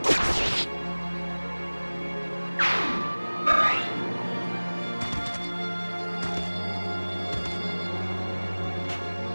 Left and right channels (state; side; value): inverted; both; correlation -1.00